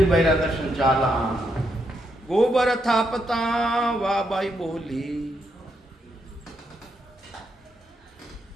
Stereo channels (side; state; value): both; normal; correlation 0.79